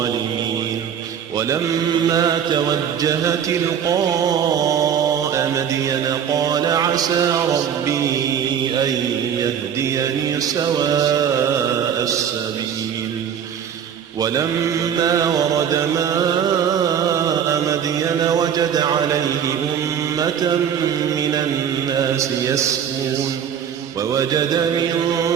ولما توجه تلقاء مدين قال عسى ربي أن يهديني سواء السبيل. ولما ورد ماء مدين وجد عليه أمة من الناس يسقون ووجد من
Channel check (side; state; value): left; quieter; 8.4 dB